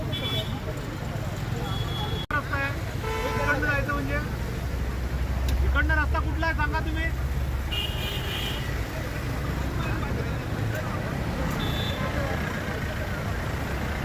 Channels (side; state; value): both; identical; correlation 1.00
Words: इकडनं रस्ता कुठला आहे सांगा तुम्ही.